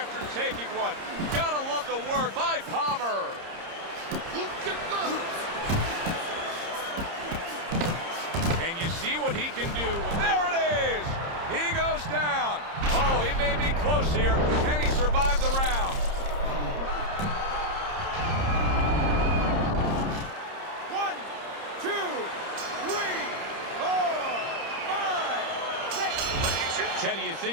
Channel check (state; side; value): late; left; 30 ms